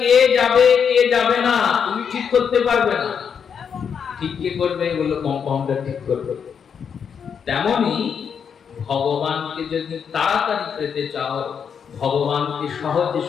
যাবে কে যাবে না তুমি ঠিক করতে পারবে না। ঠিক কে করবে? বললো কম্পাউন্ডার ঠিক করবে। তেমনি ভগবানকে যদি তাড়াতাড়ি পেতে চাও, ভগবানকে সহজে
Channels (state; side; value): quieter; right; 7.1 dB